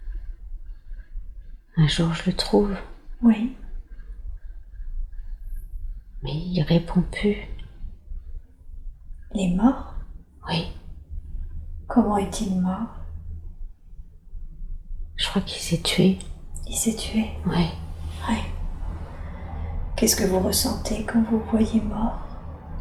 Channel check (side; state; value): both; identical; correlation 1.00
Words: un jour, je le trouve. Oui. Mais il répond plus. Il est mort? Oui. Comment est-il mort? Je crois qu'il s'est tué. Il s'est tué? Oui. Oui. Qu'est-ce que vous ressentez quand vous voyez mort?